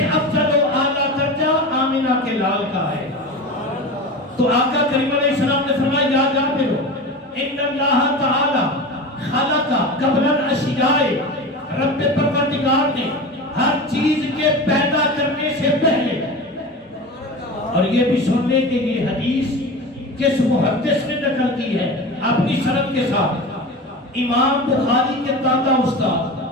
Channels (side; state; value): both; normal; correlation 0.29